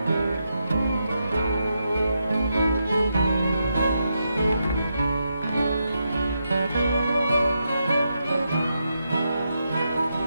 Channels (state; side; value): inverted; both; correlation -0.84